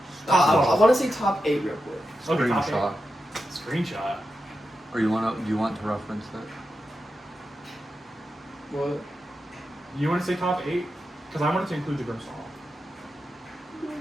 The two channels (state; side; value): normal; both; correlation 0.89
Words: Top I want to say top 8 real quick. Okay, top Screenshot. 8. Screenshot. Or do you want to reference that? What? You want to say top 8? Because I wanted to include the Grimstall.